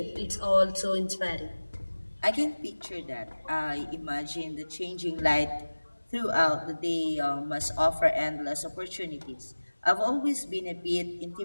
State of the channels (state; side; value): inverted; both; correlation -1.00